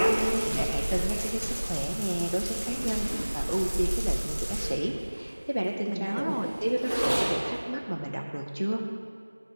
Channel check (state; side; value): inverted; both; correlation -1.00